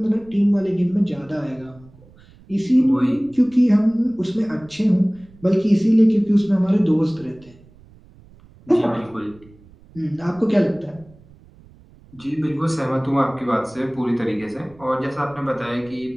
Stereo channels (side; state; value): right; noise; rumble, 25 dB below the sound